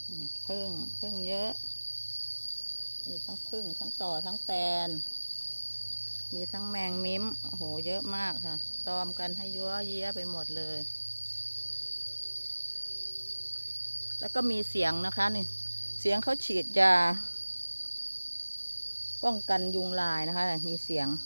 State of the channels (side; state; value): both; inverted; correlation -1.00